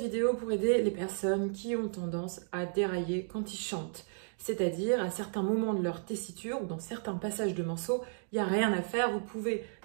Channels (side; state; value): left; silent; digital silence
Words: vidéo pour aider les personnes qui ont tendance à dérailler quand ils chantent. C'est-à-dire à certains moments de leur tessiture ou dans certains passages de morceaux, il n'y a rien à faire, vous pouvez